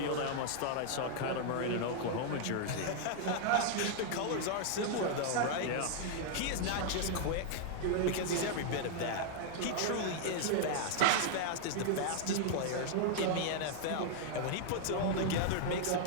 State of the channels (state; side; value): different; both; correlation 0.00